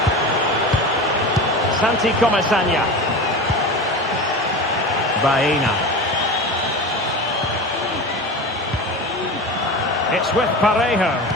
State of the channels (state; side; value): normal; both; correlation 0.29